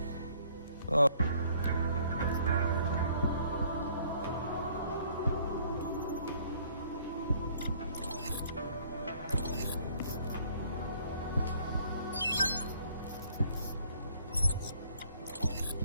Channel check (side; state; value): both; inverted; correlation -0.60